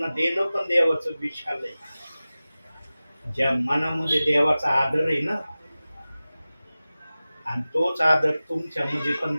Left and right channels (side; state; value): both; inverted; correlation -0.97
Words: देणं पण देवाचं विशाल आहे. ज्या मनामध्ये देवाचा आदर आहे ना, आणि तोच आदर तुमच्यामध्ये पण